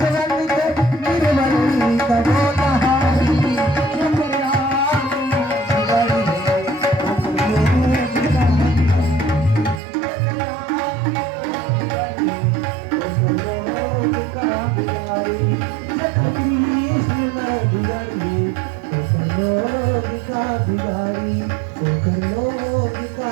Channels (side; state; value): left; drops out; at 9.8 s